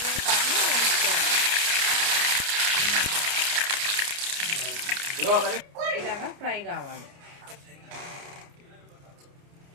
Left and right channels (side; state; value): left; late; 29 ms